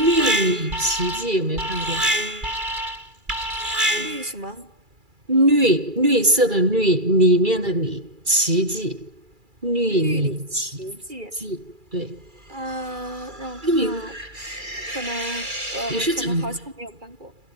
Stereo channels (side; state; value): left; late; 2.3 ms